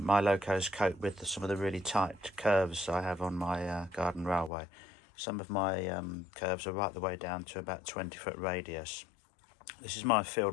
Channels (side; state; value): right; drops out; at 4.5 s